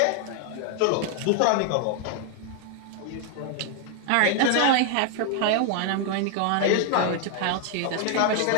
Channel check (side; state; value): both; different; correlation 0.00